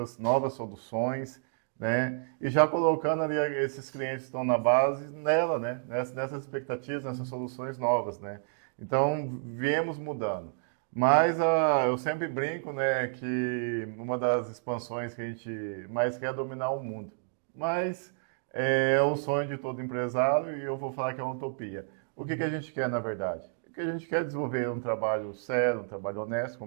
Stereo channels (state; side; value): silent; left; digital silence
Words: novas soluções, né? E já colocando ali esses clientes que estão na base nela, né? Nessas expectativas, nessas soluções novas, né? Então, viemos mudando. Mas eu sempre brinco, né, que uma das expansões que a gente mais quer é dominar o mundo. Mas é o sonho de todo empresário e eu vou falar que é uma utopia. O que a gente quer, na verdade? O que a gente quer é desenvolver um trabalho sério, um trabalho honesto,